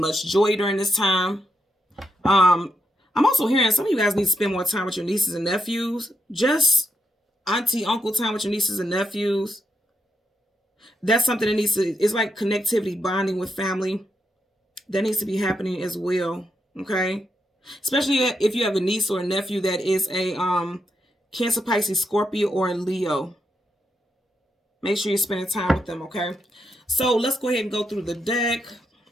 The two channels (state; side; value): normal; both; correlation 0.81